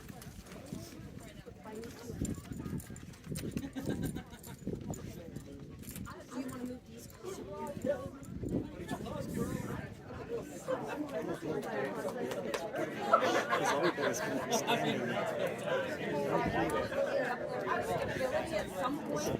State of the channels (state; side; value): identical; both; correlation 1.00